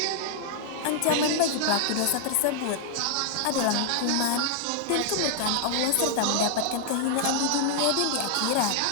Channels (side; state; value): both; different; correlation -0.01